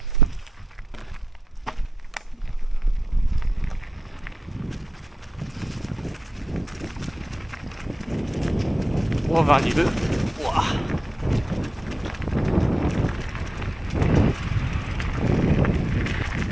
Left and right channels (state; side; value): normal; both; correlation 0.91